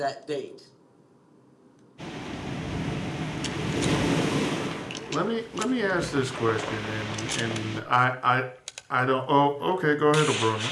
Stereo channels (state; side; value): identical; both; correlation 1.00